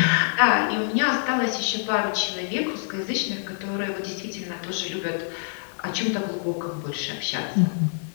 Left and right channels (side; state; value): right; silent; 61 dB below the other